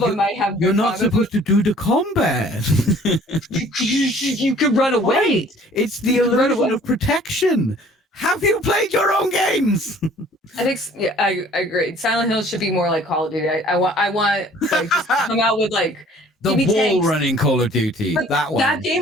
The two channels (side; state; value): both; normal; correlation 0.53